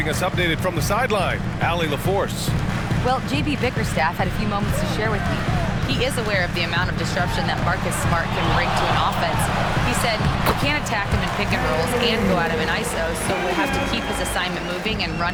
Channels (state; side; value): identical; both; correlation 1.00